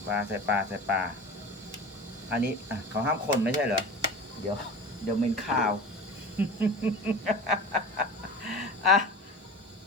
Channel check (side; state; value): both; normal; correlation 0.34